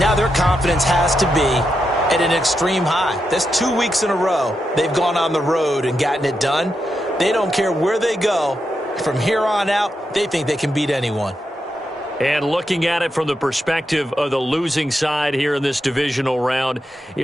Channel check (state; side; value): normal; both; correlation 0.85